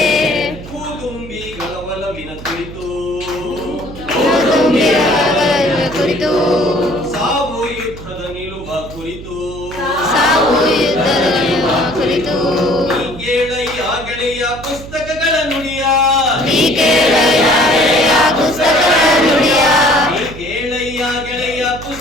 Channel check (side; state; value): right; noise; hum, 14 dB below the sound